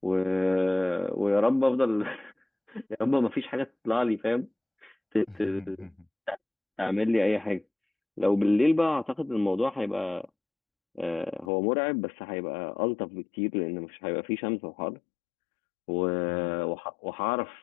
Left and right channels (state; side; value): drops out; right; at 11.5 s